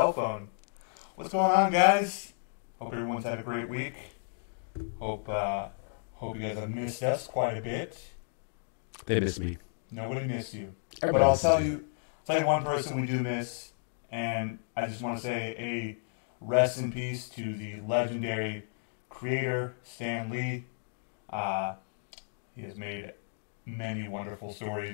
phone. What's going on, guys? Hope everyone's had a great week. Hope you guys have missed us quite a bit. They miss me. Nobody missed you. Everybody But I'll misses tell me. you one person we do miss, and I just want to say a rest in peace to the legendary creator, Stan Lee. He has made many wonderful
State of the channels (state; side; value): silent; right; digital silence